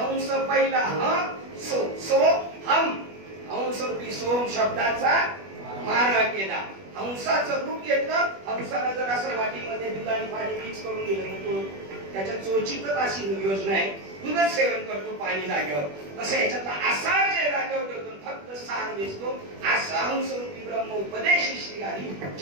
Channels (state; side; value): late; left; 21 ms